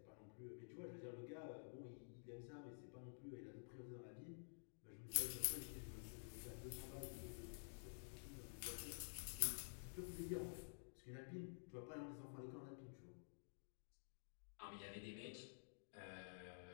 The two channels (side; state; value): right; silent; digital silence